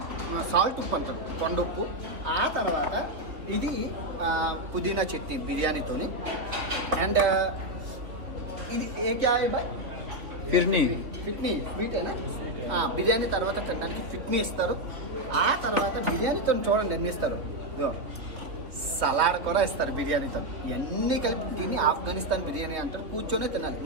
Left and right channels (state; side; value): late; left; 3.2 ms